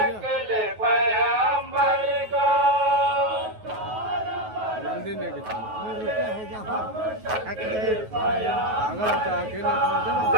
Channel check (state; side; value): late; left; 9.3 ms